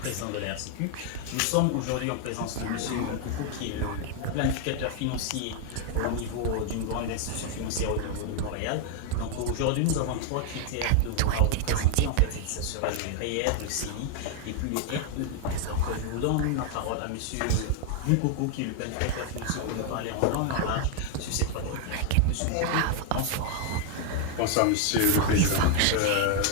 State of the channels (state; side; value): different; both; correlation 0.00